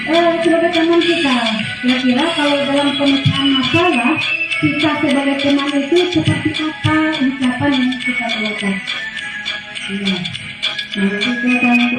sebagai teman kita. Kira-kira kalau dalam pemecahan masalah, kita sebagai teman itu seperti apa ucapan yang kita keluarkan? Nah, itu yang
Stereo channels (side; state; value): both; identical; correlation 1.00